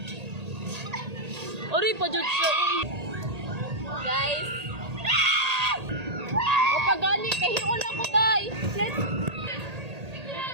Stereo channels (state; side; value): late; left; 1.8 ms